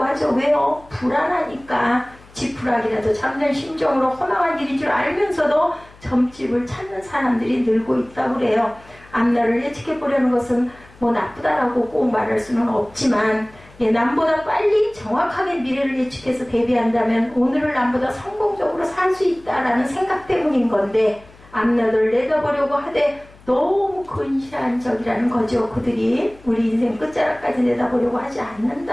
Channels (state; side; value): noise; left; hum, 24 dB below the sound